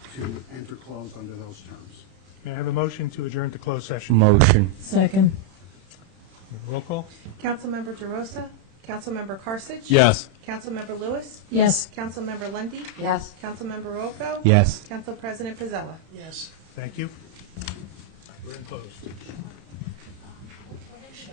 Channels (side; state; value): left; late; 31 ms